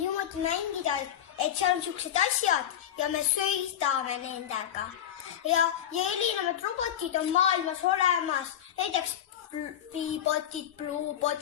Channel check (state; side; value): quieter; right; 10.3 dB